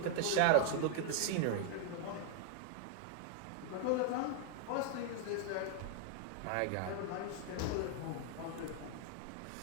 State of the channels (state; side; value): different; both; correlation 0.00